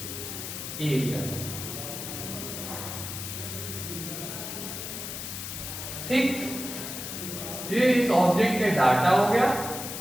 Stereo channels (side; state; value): left; noise; hiss, 7 dB below the sound